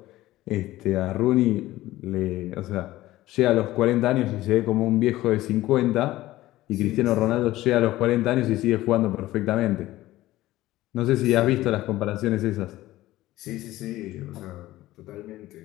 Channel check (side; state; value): right; quieter; 16.3 dB